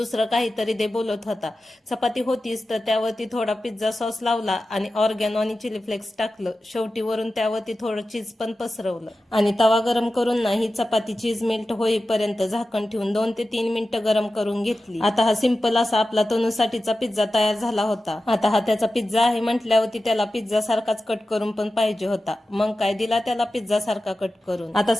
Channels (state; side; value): normal; both; correlation 0.94